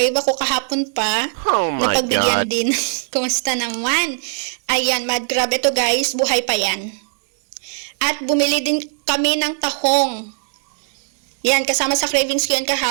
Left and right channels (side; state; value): left; silent; 59 dB below the other